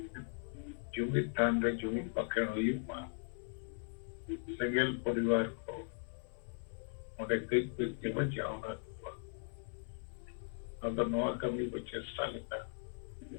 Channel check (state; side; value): silent; right; 52 dB below the other